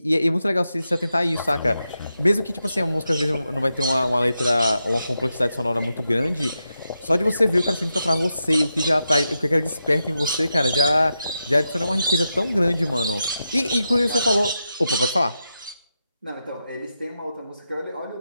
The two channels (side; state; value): both; inverted; correlation -0.87